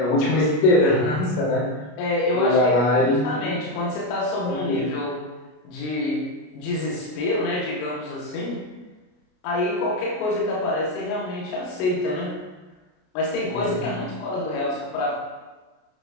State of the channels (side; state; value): right; late; 33 ms